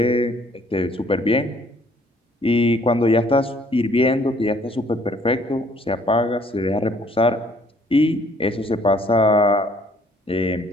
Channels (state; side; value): normal; both; correlation 0.61